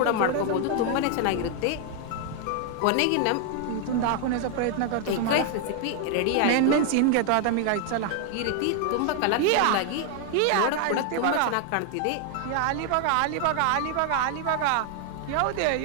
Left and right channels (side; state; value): both; different; correlation 0.00